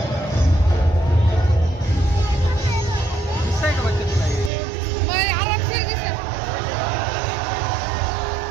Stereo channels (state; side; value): drops out; left; at 4.5 s